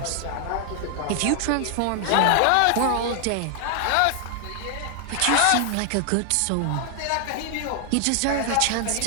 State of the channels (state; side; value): different; both; correlation 0.00